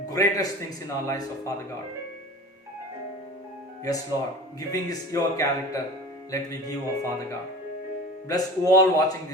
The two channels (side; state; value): both; normal; correlation 0.37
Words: greatest things in our lives, oh Father God. Yes, Lord, giving is your character. Let me give, oh Father God. Bless all watching